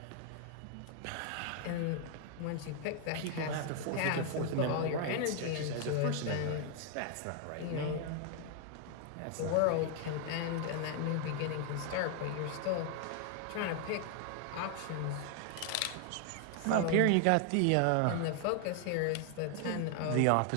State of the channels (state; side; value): different; both; correlation 0.00